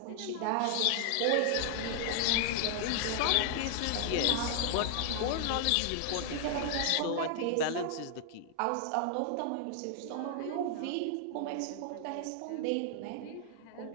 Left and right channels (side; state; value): both; different; correlation 0.00